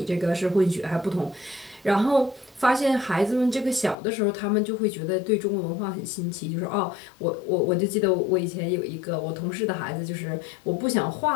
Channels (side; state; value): right; drops out; at 4.0 s